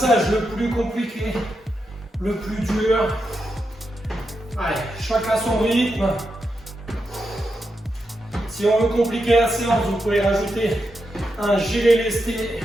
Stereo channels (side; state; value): both; normal; correlation 0.86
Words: le plus compliqué, le plus dur. Allez, chacun son rythme. Si on veut compliquer la séance, vous pouvez rajouter un gilet lesté